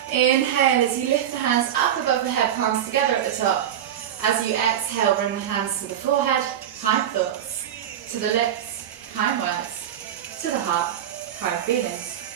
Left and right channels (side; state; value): left; quieter; 10.3 dB